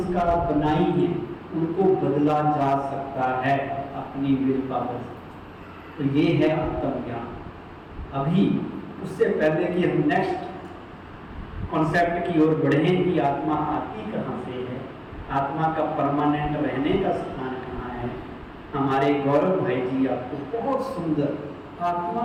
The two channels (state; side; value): identical; both; correlation 1.00